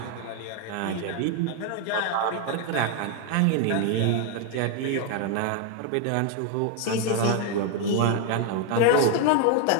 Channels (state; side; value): different; both; correlation 0.00